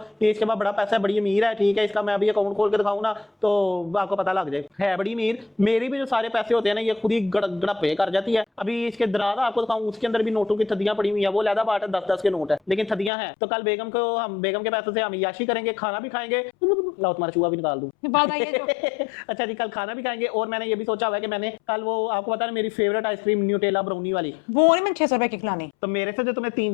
ये इसके बाद बड़ा पैसा है, बड़ी अमीर है, ठीक है, इसका मैं अभी अकाउंट खोल के दिखाऊँ ना तो आपको पता लग जाए है बड़ी अमीर। मेरी भी जो सारे पैसे होते हैं ना ये खुद ही गड़पे कर जाती है। अभी इसके दराजा आपको दिखाऊं, उसके अंदर भी नोटों की थदियां पड़ी हुई है, वो लहदा बाट है, 10-10 के नोट है लेकिन थदियां हैं। तो कल बेगम के पैसों से हम याशी करेंगे, खाना भी खाएंगे, लाओ तुम्हारा चूहा भी निकाल दूं। बात आई है जो अच्छा जी, कल खाना भी खाएंगे और मैंने ये भी सोचा हुआ है कि मैंने कल वो आपको पता है मेरी फेवरेट आइसक्रीम न्यूटेला ब्राउनी वाली, वो नहीं, मैंने 600 रुपए की खिलानी। तो मेरे से जो तुमने 3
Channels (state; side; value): drops out; right; at 13.1 s